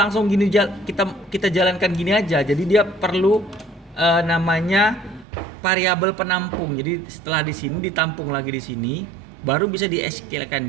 gini kita jalankan gini aja. Jadi dia perlu namanya variabel penampung. Jadi setelah di sini ditampung lagi di sini, baru bisa di SQL-kan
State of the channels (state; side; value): drops out; left; at 5.2 s